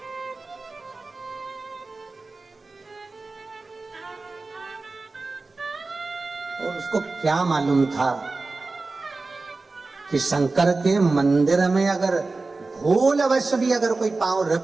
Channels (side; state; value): left; quieter; 3.6 dB